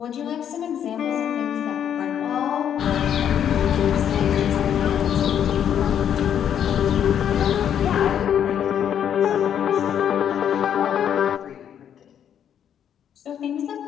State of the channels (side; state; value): right; quieter; 9.2 dB